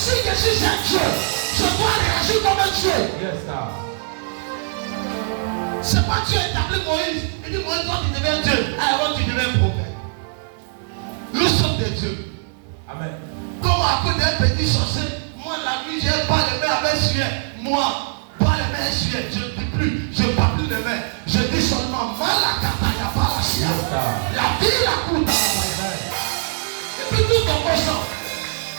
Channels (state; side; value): silent; left; digital silence